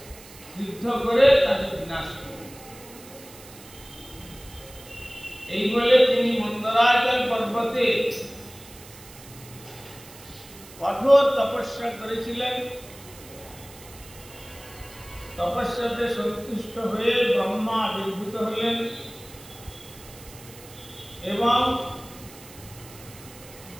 যুদ্ধ করে তাকে বিনাশ করি। এই বলে তিনি মন্দরাচল পর্বতে কঠোর তপস্যা করেছিলেন। তপস্যাতে সন্তুষ্ট হয়ে ব্রহ্মা আবির্ভূত হলেন এবং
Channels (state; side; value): noise; right; hiss, 19 dB below the sound